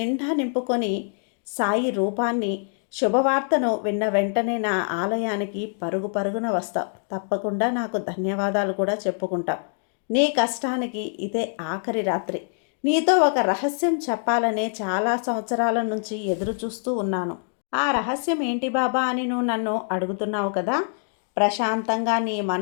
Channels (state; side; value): silent; right; 62 dB below the other